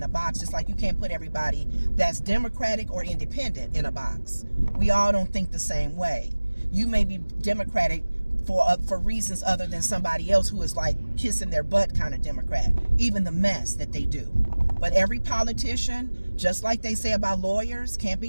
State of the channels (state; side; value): inverted; both; correlation -1.00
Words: a box, just like you can't put everybody that's Democratic or independent in a box. We all don't think the same way. You may be Democratic for reasons other than somebody else who is like kissing their butt kind of Democrat, even the mess that they do. But every politician, just like they say about lawyers, can't